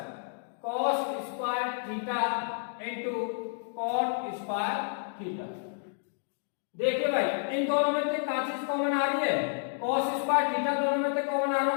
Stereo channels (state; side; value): silent; right; digital silence